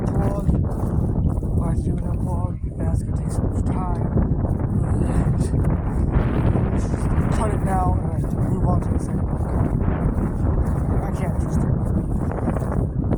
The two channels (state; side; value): identical; both; correlation 1.00